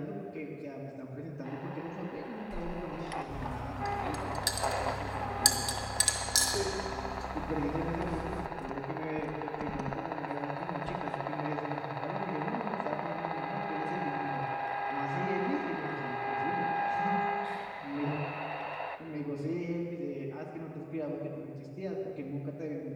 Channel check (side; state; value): both; identical; correlation 1.00